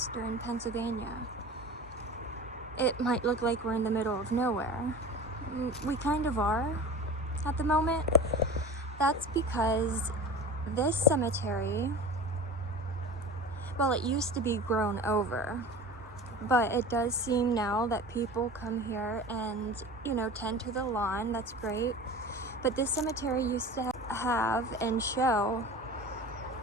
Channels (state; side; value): normal; both; correlation 0.35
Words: Pennsylvania. It might look like we're in the middle of nowhere. We kind of are at the moment. That's because this cemetery, well, it used to be grown over, but it does seem now that people come here and, tend to the lawn. That's great. But this cemetery used to have and show